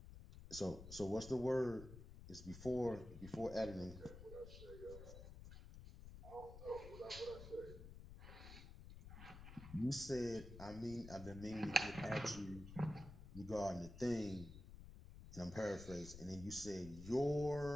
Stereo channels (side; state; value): left; noise; rumble, 13 dB below the sound